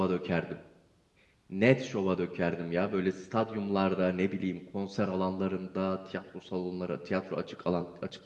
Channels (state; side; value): identical; both; correlation 1.00